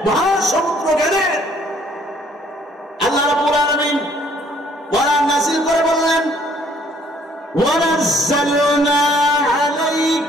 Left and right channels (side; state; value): both; normal; correlation 0.61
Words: মহাসমুদ্র জ্ঞানের। আল্লাহ রাব্বুল আলামিন কোরআন নাযিল করে বললেন ওয়ানাজ্জালনা